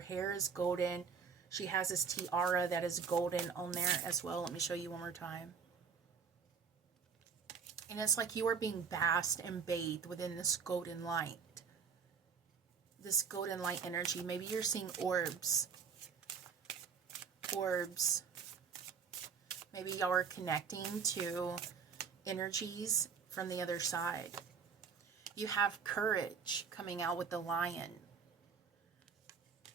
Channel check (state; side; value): quieter; left; 6.2 dB